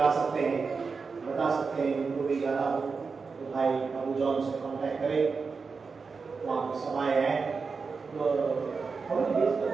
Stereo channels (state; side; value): quieter; left; 4.9 dB